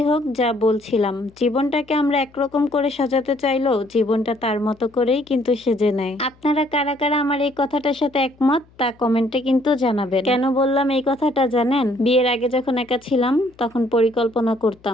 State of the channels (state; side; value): noise; left; hum, 29 dB below the sound